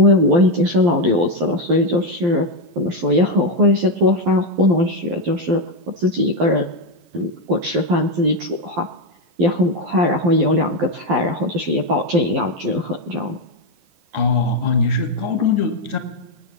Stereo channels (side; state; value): left; late; 12 ms